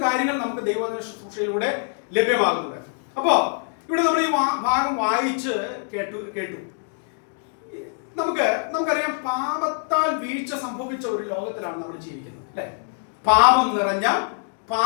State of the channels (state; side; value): silent; right; 63 dB below the other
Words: കാര്യങ്ങൾ നമുക്ക് ദൈവവചന ശുശ്രൂഷയിലൂടെ ലഭ്യമാകുന്നുണ്ട്. അപ്പോ ഇവിടെ നമ്മൾ ഈ ഭാഗം വായിച്ച് കേട്ടു. നമുക്കറിയാം, പാപത്താൽ വീഴ്ച സംഭവിച്ച ഒരു ലോകത്തിലാണ് നമ്മൾ ജീവിക്കുന്നത്, അല്ലെ? പാപം നിറഞ്ഞ,